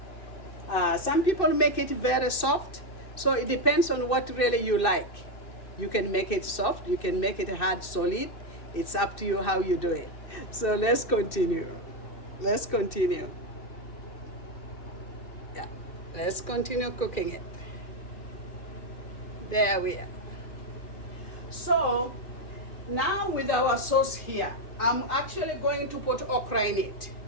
Some people make it very soft, so it depends on what really you like. You can make it soft, you can make it hard, solid. It's up to you how you do it. So let's continue. Let's continue. Yeah, let's continue cooking it. There we are. So now with our sauce here, I'm actually going to put okra in it.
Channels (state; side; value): late; right; 2.6 ms